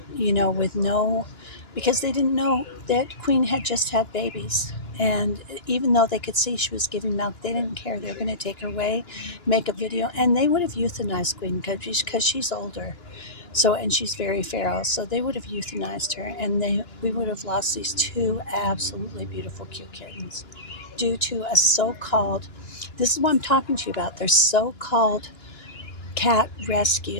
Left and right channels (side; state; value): right; late; 2.9 ms